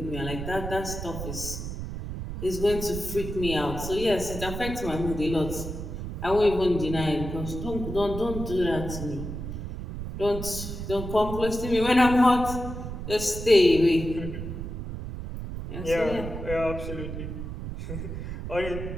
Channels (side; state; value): right; noise; rumble, 7 dB below the sound